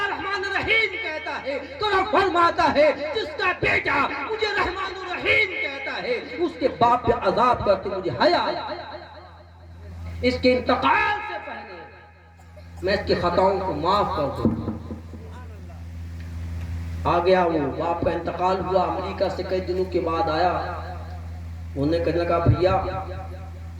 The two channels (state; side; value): identical; both; correlation 1.00